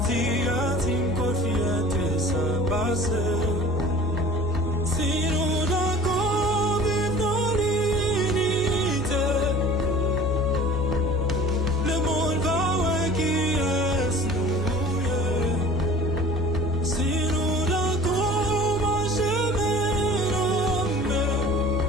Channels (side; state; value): both; normal; correlation 0.45